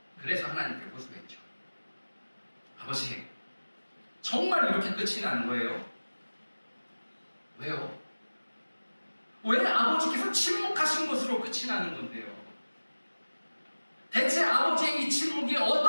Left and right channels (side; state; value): both; inverted; correlation -1.00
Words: 그래서 하나님께 호소했죠. 아버지, 정말 이렇게 끝이 난 거예요? 왜요? 왜 아버지께서 침묵하신 것으로 끝이 나는 건데요? 대체 아버지의 이 침묵이